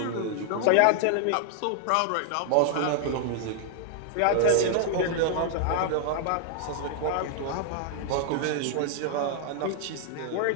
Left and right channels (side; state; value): both; different; correlation 0.00